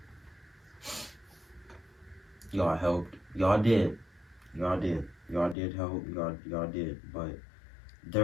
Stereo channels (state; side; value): drops out; right; at 5.6 s